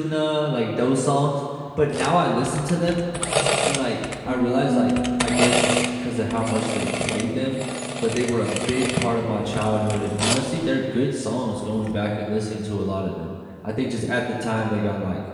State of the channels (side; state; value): both; identical; correlation 1.00